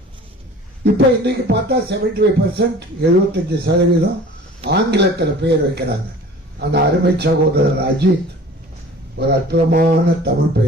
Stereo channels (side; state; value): both; normal; correlation 0.44